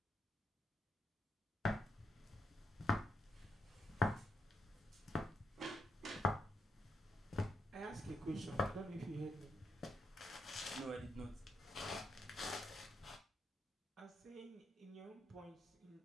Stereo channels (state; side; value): normal; both; correlation 0.81